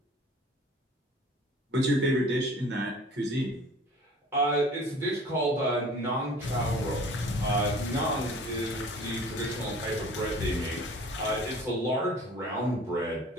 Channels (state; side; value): normal; both; correlation 0.46